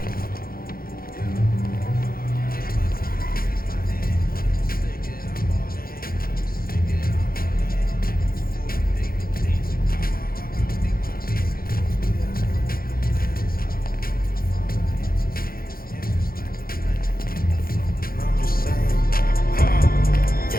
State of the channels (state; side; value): late; right; 0.43 ms